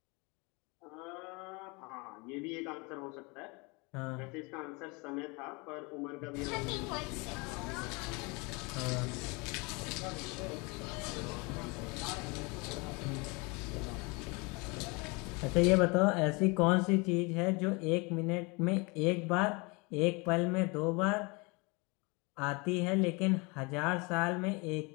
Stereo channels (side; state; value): right; quieter; 28.3 dB